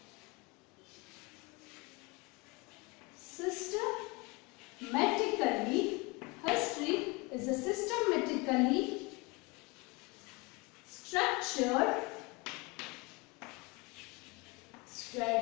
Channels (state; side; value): quieter; right; 26.7 dB